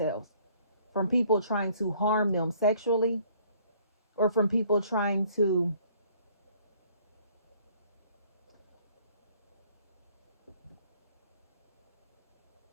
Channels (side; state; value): both; inverted; correlation -0.60